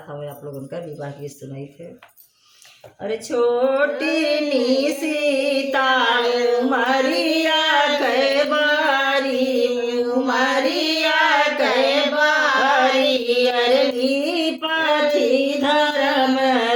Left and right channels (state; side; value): identical; both; correlation 1.00